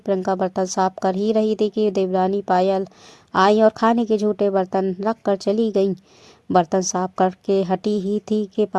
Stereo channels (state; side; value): identical; both; correlation 1.00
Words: बर्तन साफ कर ही रही थी कि देवरानी पायल आई और खाने के झूठे बर्तन रख कर चली गई। बर्तन साफ करके हटी ही थी कि